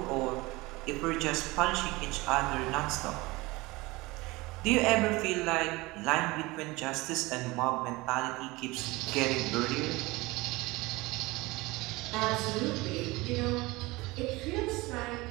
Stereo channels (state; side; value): quieter; left; 22.0 dB